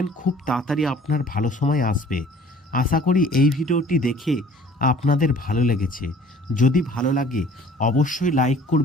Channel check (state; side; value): normal; both; correlation 0.52